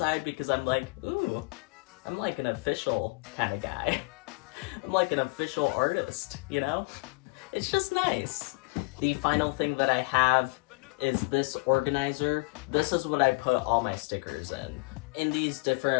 because I'm like, ooh, I'm like an official kind of guy. I'm like an official artist, you know? It's just nice. The final thing that I have is this organizer. This is what I put all my stickers in. In these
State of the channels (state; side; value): quieter; right; 29.3 dB